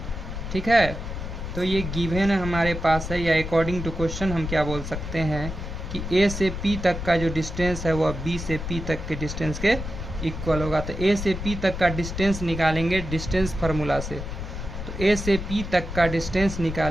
ठीक है, तो ये गिवन हमारे पास है, या अकॉर्डिंग टू क्वेश्चन हम क्या बोल सकते हैं कि ए से पी तक का जो डिस्टेंस है वह बी से पी तक के डिस्टेंस के इक्वल होगा। तो ए से पी तक का डिस्टेंस निकालेंगे डिस्टेंस फार्मूला से, तो ए से पी तक का डिस्टेंस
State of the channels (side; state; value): left; noise; rumble, 6 dB below the sound